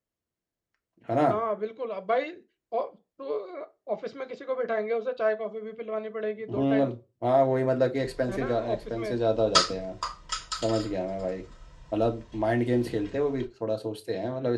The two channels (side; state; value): both; identical; correlation 1.00